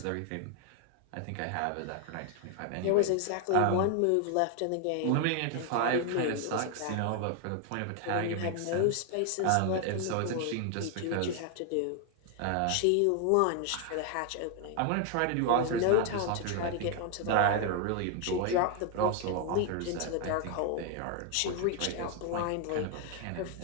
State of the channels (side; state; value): both; different; correlation 0.00